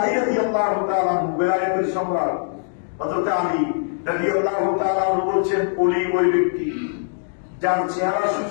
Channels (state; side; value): silent; right; digital silence